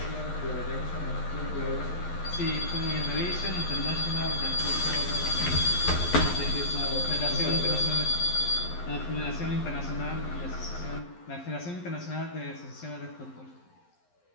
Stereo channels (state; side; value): late; right; 11 ms